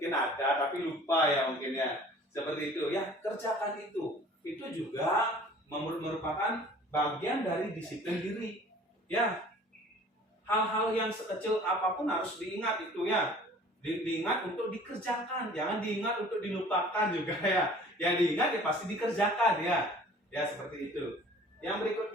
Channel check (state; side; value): normal; both; correlation 0.49